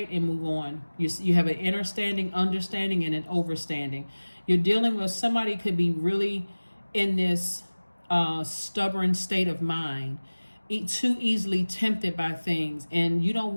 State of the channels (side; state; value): both; inverted; correlation -1.00